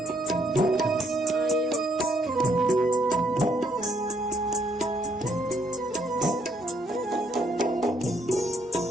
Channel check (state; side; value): normal; both; correlation 0.70